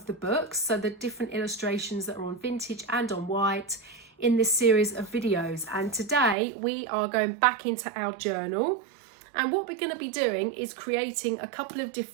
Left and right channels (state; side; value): drops out; left; at 6.4 s